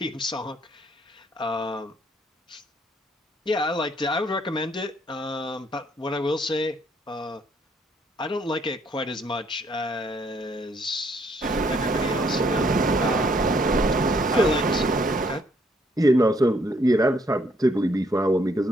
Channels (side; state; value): both; normal; correlation 0.68